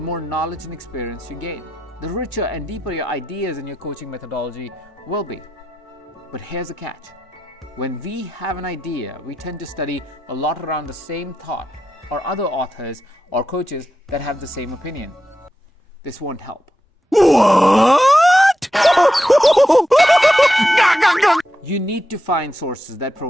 knowledge and experience you gain. The richer and deeper your ideas and your coaching methodology will be. But here's the catch. When we have an idea, we tend to study a lot around the same thought or other authors or coaches that have the same opinion. This won't help. What? You need to find sources that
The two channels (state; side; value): normal; both; correlation 0.88